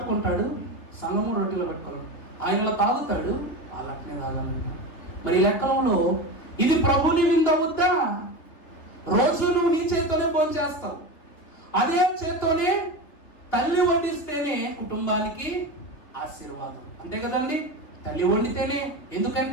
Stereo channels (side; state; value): right; late; 3.5 ms